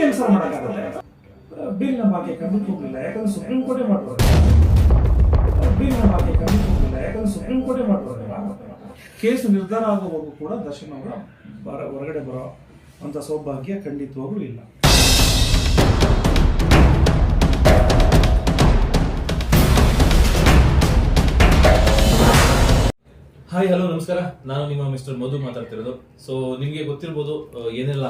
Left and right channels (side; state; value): both; identical; correlation 1.00